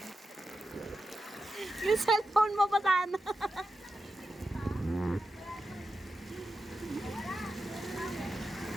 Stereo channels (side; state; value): both; normal; correlation 0.89